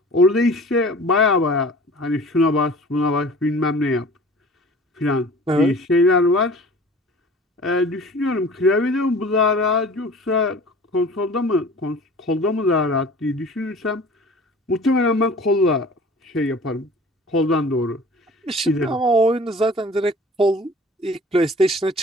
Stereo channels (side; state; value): both; normal; correlation 0.44